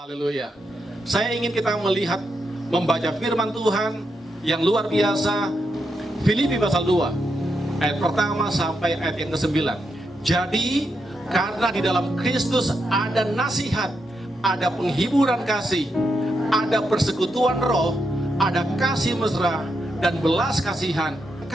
Haleluya. Saya ingin kita melihat, membaca firman Tuhan yang luar biasa. Filipi pasal 2 ayat pertama sampai ayat yang ke-9. Jadi karena di dalam Kristus ada nasihat, ada penghiburan kasih, ada persekutuan roh, ada kasih mesra dan belas kasihan.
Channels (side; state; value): both; normal; correlation 0.83